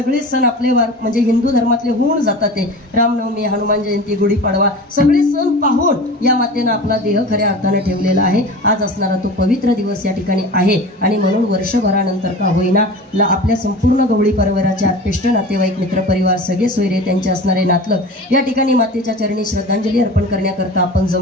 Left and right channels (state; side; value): normal; both; correlation 0.35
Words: सण आपले म्हणजे हिंदू धर्मातले होऊन जातात. ते रामनवमी, हनुमान जयंती, गुढीपाडवा सगळे सण पाहून या मातेनं आपला देह खऱ्या अर्थानं ठेवलेला आहे. आज असणारा तो पवित्र दिवस या ठिकाणी आहे आणि म्हणून वर्षभरानंतर का होईना आपल्या संपूर्ण गवळी परिवाराचे आत्पेष्ट नातेवाईक, मित्रपरिवार, सगळे सोयरे, त्यांचे असणारे नातलं या ठिकाणी मातेच्या चरणी श्रद्धांजली अर्पण करण्याकरता आपण